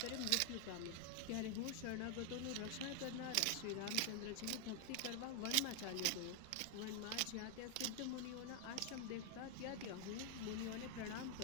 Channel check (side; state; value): both; different; correlation 0.00